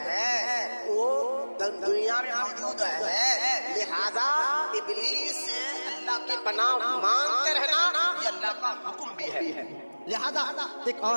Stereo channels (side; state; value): both; inverted; correlation -1.00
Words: وہ دنیا میں موجود ہے. لہذا ابلیس سے اللہ کی پناہ مانگتے رہنا یہ اللہ کا حکم بھی ہے. لہذا ایک